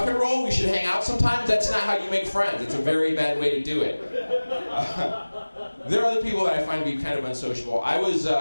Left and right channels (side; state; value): both; inverted; correlation -1.00